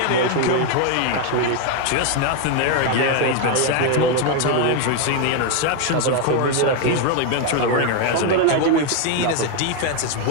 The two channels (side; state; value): both; different; correlation 0.01